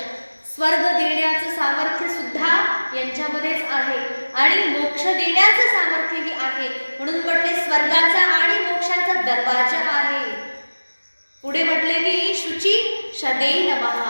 स्वर्ग देण्याचं सामर्थ्य सुद्धा यांच्यामध्येच आहे आणि मोक्ष देण्याचं सामर्थ्यही आहे. म्हणून म्हटले स्वर्गाचा आणि मोक्षाचा दरवाजा आहे. पुढे म्हटले की शुची शदे नमः,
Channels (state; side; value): inverted; both; correlation -1.00